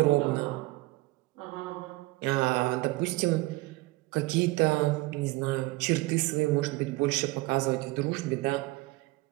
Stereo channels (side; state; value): left; quieter; 20.9 dB